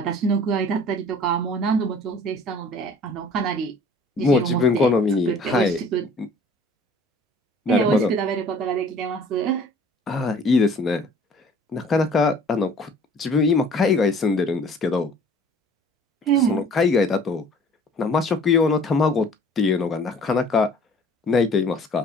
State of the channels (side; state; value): both; normal; correlation 0.50